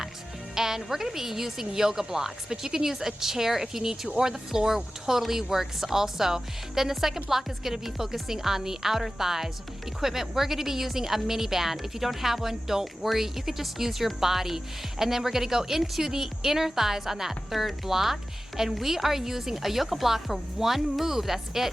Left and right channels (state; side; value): normal; both; correlation 0.95